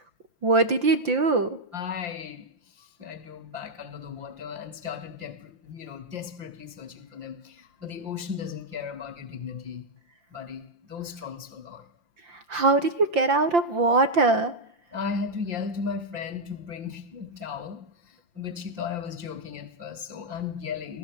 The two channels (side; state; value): left; late; 5.8 ms